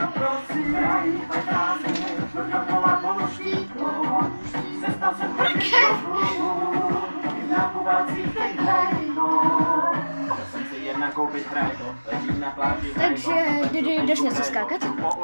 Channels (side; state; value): both; inverted; correlation -1.00